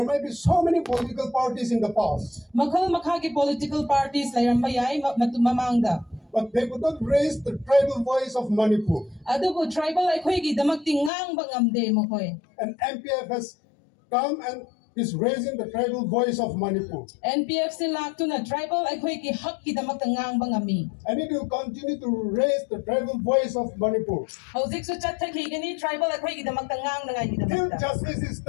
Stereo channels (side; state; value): right; drops out; at 11.1 s